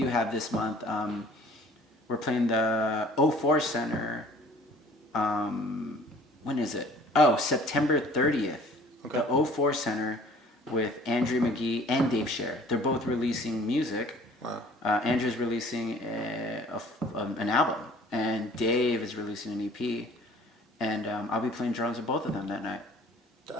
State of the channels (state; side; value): normal; both; correlation 0.52